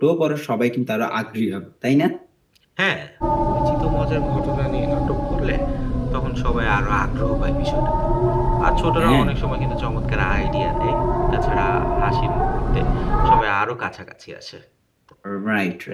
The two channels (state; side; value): identical; both; correlation 1.00